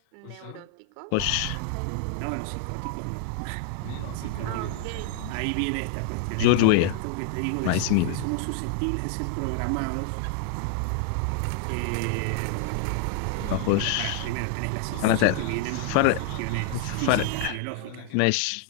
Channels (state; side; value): different; both; correlation 0.00